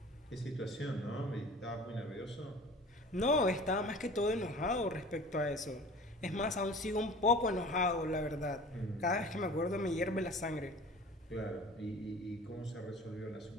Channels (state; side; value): normal; both; correlation 0.42